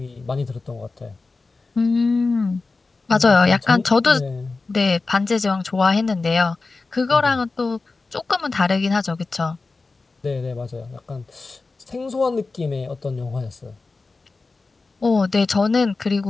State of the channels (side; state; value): right; quieter; 3.8 dB